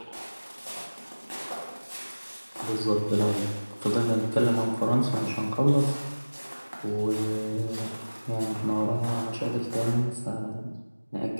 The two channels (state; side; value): inverted; both; correlation -1.00